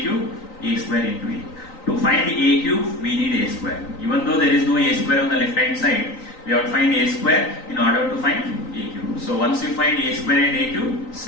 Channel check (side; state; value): right; late; 3.9 ms